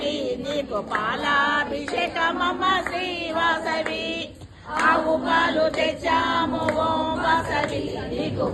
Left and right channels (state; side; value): identical; both; correlation 1.00